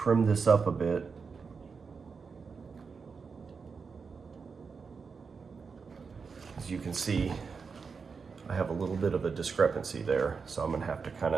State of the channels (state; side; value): quieter; left; 5.3 dB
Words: this up a bit. As you can see, I have a little bit of a discrepancy there. So I'm gonna have to kind